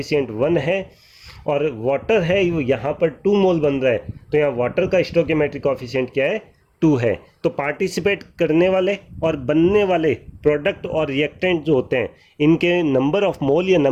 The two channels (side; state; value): both; identical; correlation 1.00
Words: 1 है। और वाटर है वो यहाँ पर 2 मोल बन रहा है तो यहाँ वाटर का स्टोकियोमेट्रिक कॉफिशिएंट क्या है, 2 है। तो पार्टिसिपेट करने वाले और बनने वाले प्रोडक्ट और रिएक्टेंट जो होते हैं इनके नंबर ऑफ मोल या